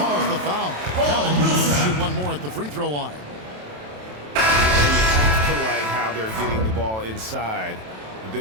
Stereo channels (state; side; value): late; left; 27 ms